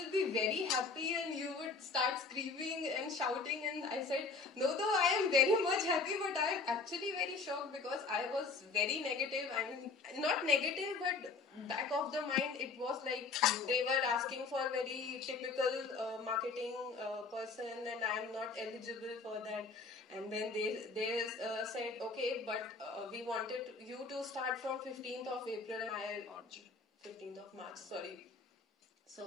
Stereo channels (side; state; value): right; quieter; 4.3 dB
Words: be very happy and you would start screaming and shouting. And I said, no, though I am very much happy, but I am actually very shocked, because I was very negative. I mean, not negative, but back of the mind, it was like they were asking for very typical marketing person, and I am not eligible for that. And then they said, okay, but we wanted you to start from 15th of April, and 15th of March, sorry.